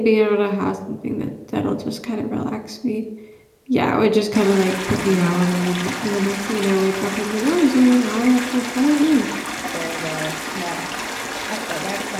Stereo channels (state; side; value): identical; both; correlation 1.00